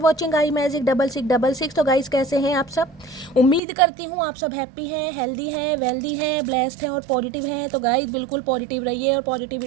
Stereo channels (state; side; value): drops out; left; at 3.6 s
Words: watching I magic 6666। तो guys, कैसे हैं आप सब? उम्मीद करती हूँ आप सब हैप्पी हैं, हेल्दी हैं, वेल्दी हैं, ब्लेस्ड हैं और पॉजिटिव हैं। तो गाइस, बिल्कुल पॉजिटिव रहिए और